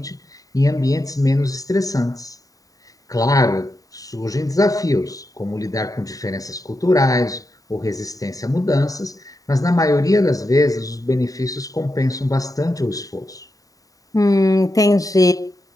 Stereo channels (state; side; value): late; right; 0.17 ms